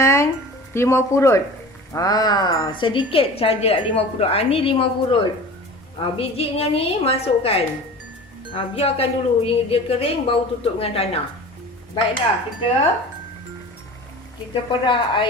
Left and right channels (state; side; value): normal; both; correlation 0.38